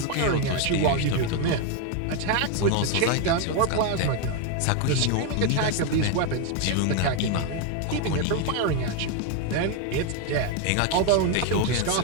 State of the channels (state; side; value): different; both; correlation 0.01